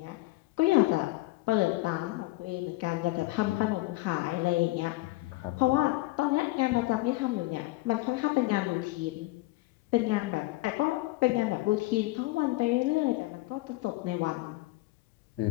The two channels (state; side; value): quieter; right; 20.3 dB